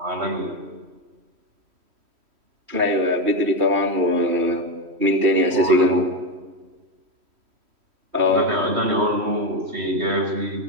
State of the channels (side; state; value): left; late; 3.1 ms